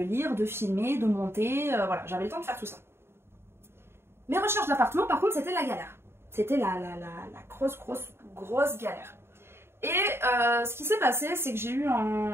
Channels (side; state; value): left; late; 0.12 ms